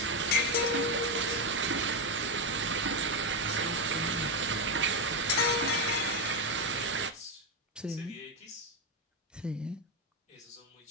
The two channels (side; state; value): both; normal; correlation 0.07